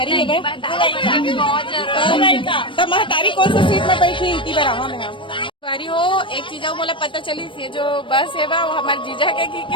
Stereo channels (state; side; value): late; right; 0.25 ms